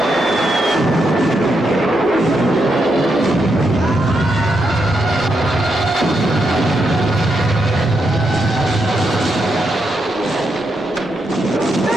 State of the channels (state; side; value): normal; both; correlation 0.81